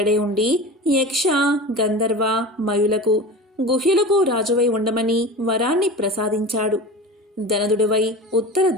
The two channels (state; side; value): normal; both; correlation 0.32